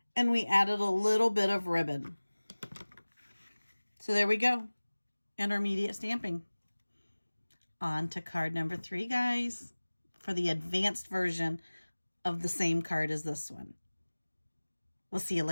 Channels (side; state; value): both; inverted; correlation -1.00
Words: and we added a little bit of ribbon. So there we go. Intermediate stamping. On to card number 3, guys, for the advanced version of the same card as this one. We'll see you